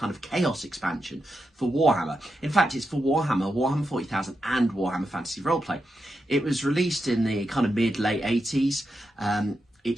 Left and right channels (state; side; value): normal; both; correlation 0.86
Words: of Chaos expansion for Warhammer. In fact, it's for Warhammer, Warhammer 40,000 and Warhammer Fantasy Roleplay. It was released in the kind of mid-late 80s.